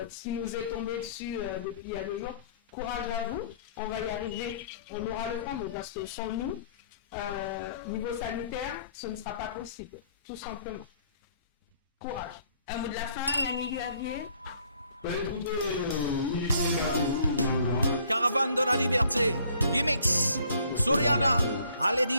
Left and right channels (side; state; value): both; inverted; correlation -0.60